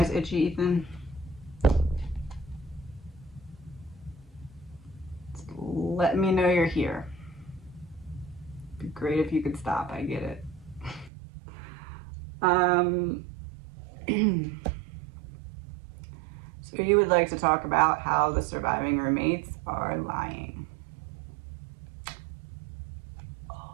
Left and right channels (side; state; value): left; drops out; at 11.1 s